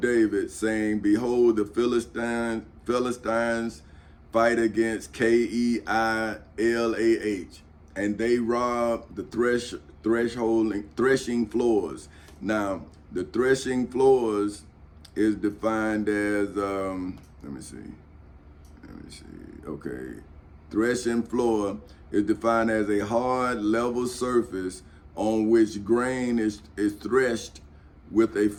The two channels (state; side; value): identical; both; correlation 1.00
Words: saying, behold, the Philistines fight against Keilah, and they robbed the threshing floors. Now, the threshing floors is defined as, let me see. Okay. Threshing floor is defined as a hard, level surface on which grain is threshed with a